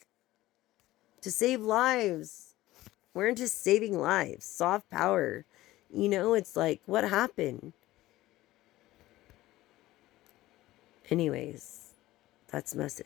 to save lives. We're into saving lives. Soft power. You know, it's like, what happened? Anyways, that's the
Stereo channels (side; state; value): right; quieter; 16.6 dB